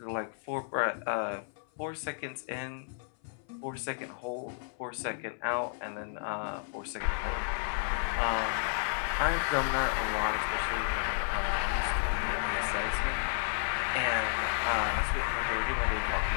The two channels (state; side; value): silent; right; 56 dB below the other